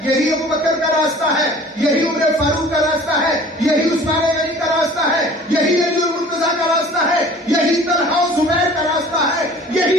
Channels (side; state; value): both; normal; correlation 0.47